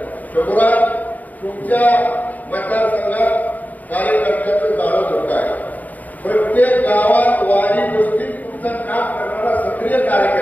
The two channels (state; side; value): late; right; 0.078 ms